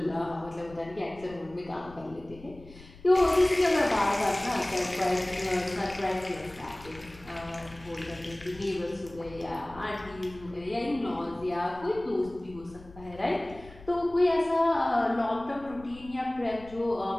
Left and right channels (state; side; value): noise; left; rumble, 20 dB below the sound